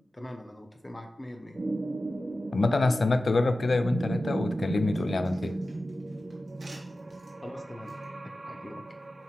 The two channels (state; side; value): normal; both; correlation 0.94